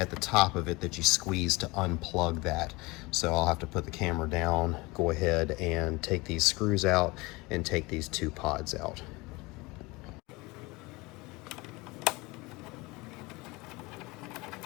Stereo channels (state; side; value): quieter; right; 23.7 dB